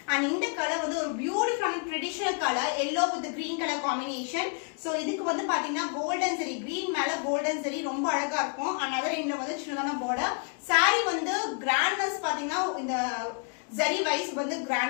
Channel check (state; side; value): quieter; right; 40.0 dB